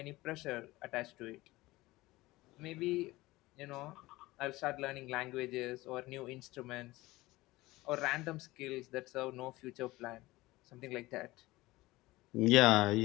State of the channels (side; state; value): right; quieter; 19.4 dB